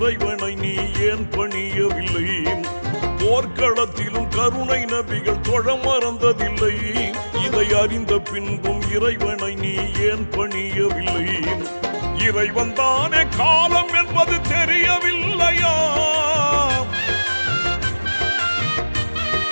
நீ ஏன் பணியவில்லை? போர்க்களத்திலும் கருணை நபிகள் தொழ மறந்ததில்லை. இதை அறிந்த பின்பும் இறைவனை நீ ஏன் பணியவில்லை? இறைவன் தானே காலம் என்பது தெரியவில்லையா?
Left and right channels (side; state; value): both; inverted; correlation -1.00